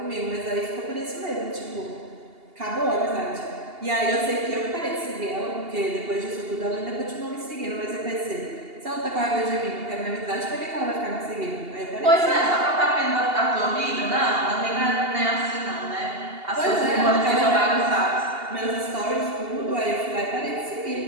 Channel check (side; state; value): left; late; 2.8 ms